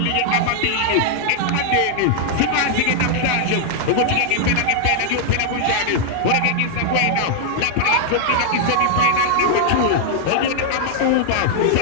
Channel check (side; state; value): both; different; correlation -0.01